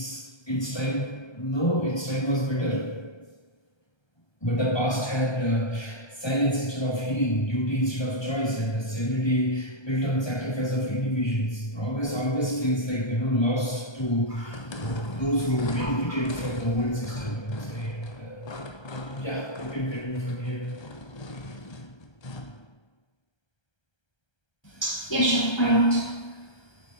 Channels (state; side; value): late; right; 1.3 ms